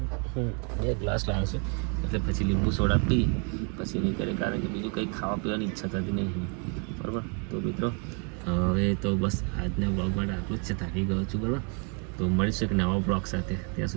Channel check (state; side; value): quieter; left; 37.6 dB